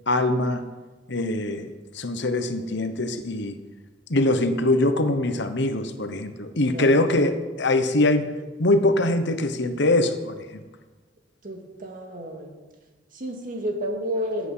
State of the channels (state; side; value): normal; both; correlation 0.27